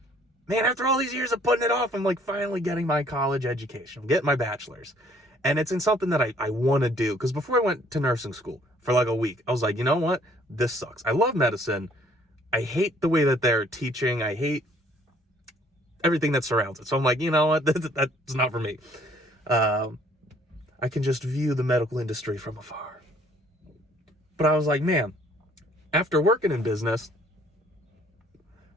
man, after all these years of putting it off, I'm like finally getting my college education. I'm getting my bachelor's. And it's in something that I want to do. Because before I went to nursing school for like a week, I was like, you know what? This sucks. I love medicine. I hate the way that they're teaching. I hate everything that surrounds it. So I'm like, you know what? That's not for me. I can just view the medical industry from afar. But I was like, man, after working in business,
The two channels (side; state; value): both; normal; correlation 0.60